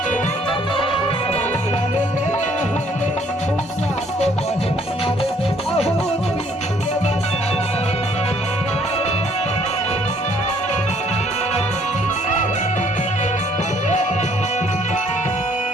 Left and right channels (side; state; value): both; normal; correlation 0.63